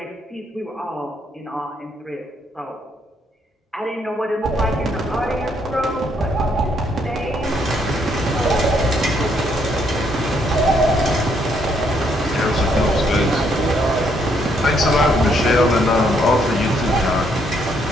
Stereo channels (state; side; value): normal; both; correlation 0.71